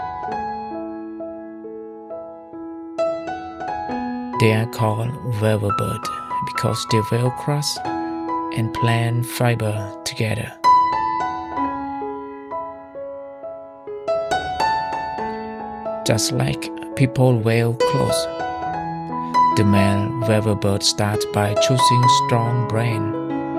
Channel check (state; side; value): identical; both; correlation 1.00